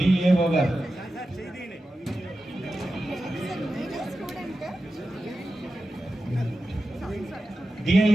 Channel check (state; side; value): normal; both; correlation 0.92